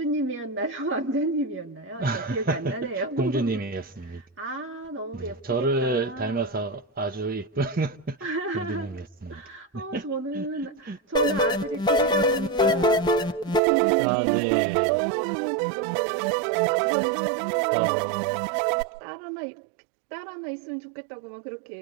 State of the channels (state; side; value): drops out; left; at 13.6 s